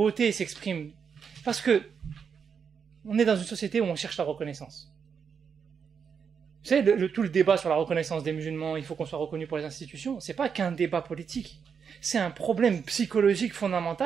s'expriment, parce que on est dans une société où on cherche la reconnaissance. Vous savez, tout le débat sur la reconnaissance des musulmans, il faut qu'on soit reconnu pour les institutions, c'est pas qu'un débat politique, c'est un problème psychologique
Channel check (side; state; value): left; quieter; 6.6 dB